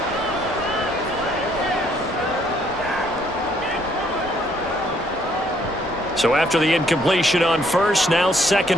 So after the incompletion on first, now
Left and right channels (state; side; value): normal; both; correlation 0.66